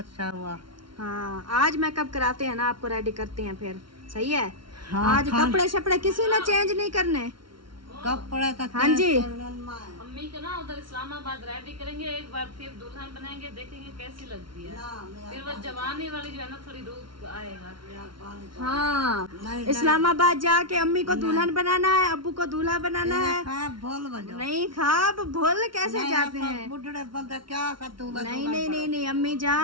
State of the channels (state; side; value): late; left; 0.73 ms